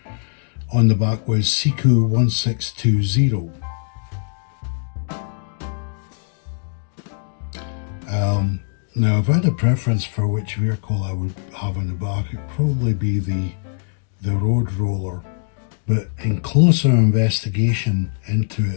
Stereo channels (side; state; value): right; silent; 65 dB below the other